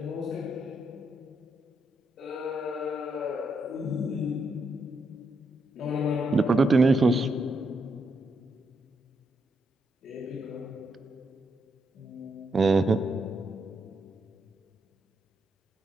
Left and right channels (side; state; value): both; normal; correlation 0.79